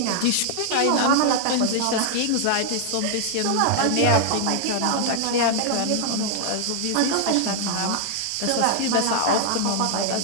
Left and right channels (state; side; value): different; both; correlation 0.00